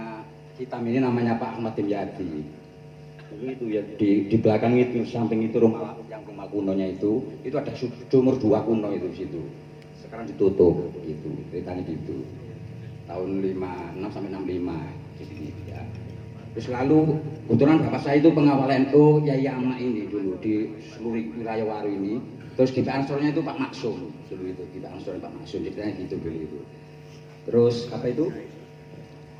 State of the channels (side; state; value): both; identical; correlation 1.00